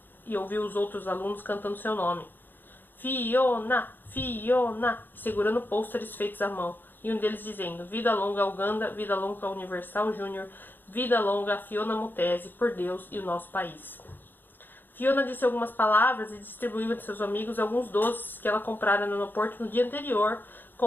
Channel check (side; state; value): right; late; 0.093 ms